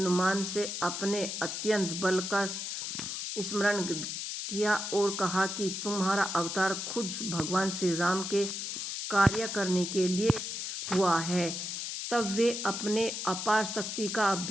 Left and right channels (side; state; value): left; noise; hiss, 4 dB below the sound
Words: से अपने अत्यंत बल का स्मरण किया और कहा कि तुम्हारा अवतार खुद भगवान श्री राम के कार्य करने के लिए हुआ है। तब वे अपने अपार शक्ति का